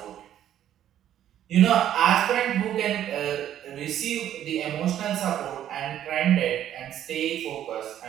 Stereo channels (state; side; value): quieter; left; 11.1 dB